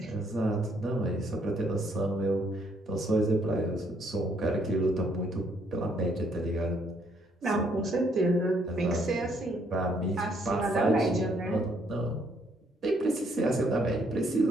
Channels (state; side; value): normal; both; correlation 0.69